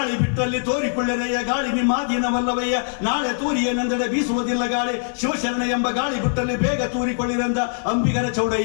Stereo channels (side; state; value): right; silent; digital silence